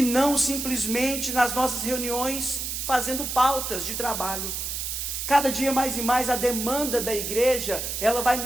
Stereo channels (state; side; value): noise; right; hiss, 4 dB below the sound